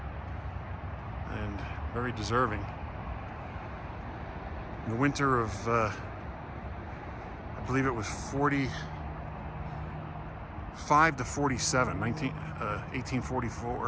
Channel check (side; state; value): both; identical; correlation 1.00